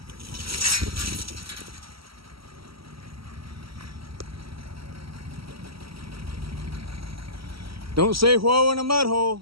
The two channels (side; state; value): left; late; 0.75 ms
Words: Don't say whoa in a mud